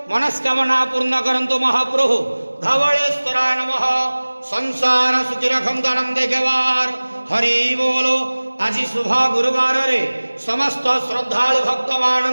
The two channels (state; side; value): inverted; both; correlation -1.00